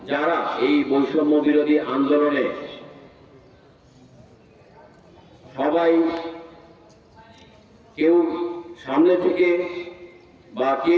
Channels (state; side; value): identical; both; correlation 1.00